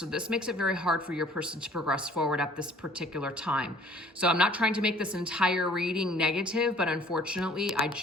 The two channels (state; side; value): normal; both; correlation 0.54